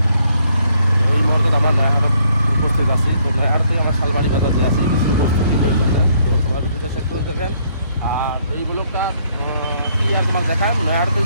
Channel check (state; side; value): inverted; both; correlation -0.68